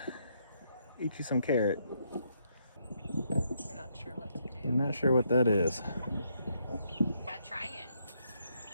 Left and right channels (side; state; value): both; inverted; correlation -0.75